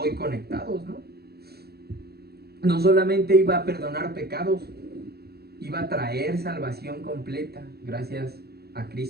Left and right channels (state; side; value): late; left; 0.46 ms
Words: conectados, ¿no? No solamente iba a perdonar pecados, iba a traer salvación completa gracias a